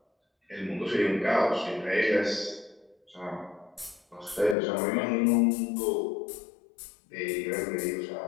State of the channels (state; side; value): drops out; right; at 4.5 s